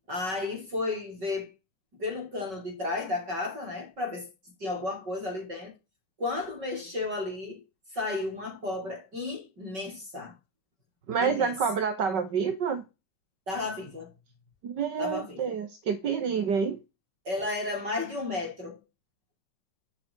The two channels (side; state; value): left; late; 5.3 ms